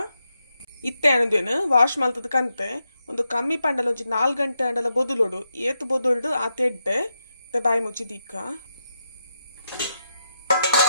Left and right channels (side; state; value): both; inverted; correlation -0.84